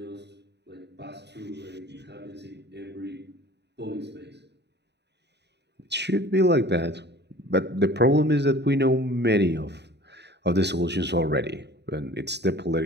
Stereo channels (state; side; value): late; left; 0.50 ms